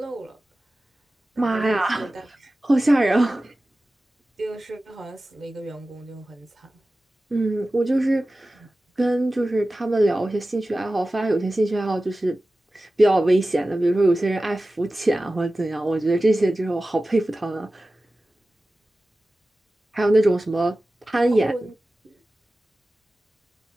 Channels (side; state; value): both; normal; correlation 0.96